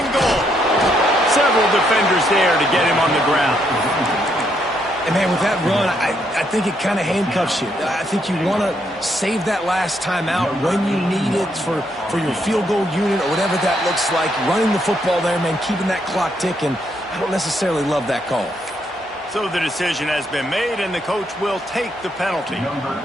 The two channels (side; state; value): both; normal; correlation 0.75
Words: goal. Several defenders there to get him on the ground. And, man, with that run, I think it kind of handcuffs you. I think you want to save that last time out when you need it for your field goal unit or whatever that looks like. Running the football there, man, keeping that clock ticking. I don't necessarily love that call. So the decision has been made, and the coach will take the penalty.